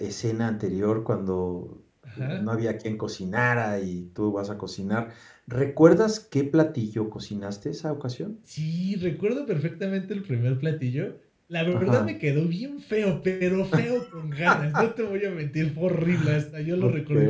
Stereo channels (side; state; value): both; identical; correlation 1.00